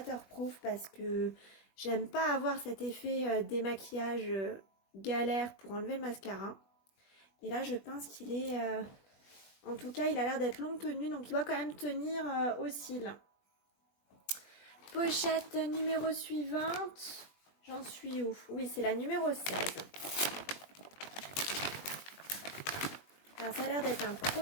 parce que j'aime pas avoir cet effet démaquillage galère pour enlever le mascara. Et là je pense qu'il est... en tout cas il a l'air d'être longue tenue, donc il doit quand même tenir aux cils. Pochette numéro suivante. J'en suis où? Oui, c'est la numéro 16. Alors, ça a l'air d'être un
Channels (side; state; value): right; late; 20 ms